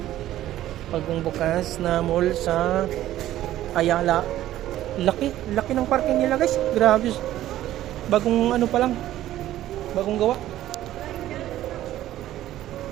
Bagong bukas na mall sa Ayala. Laki ng parking nila guys. Grabe. Bagong pa lang. Bagong gawa.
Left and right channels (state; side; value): quieter; left; 13.6 dB